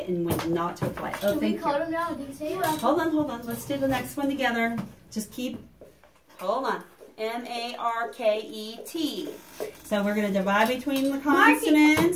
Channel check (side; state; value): both; identical; correlation 1.00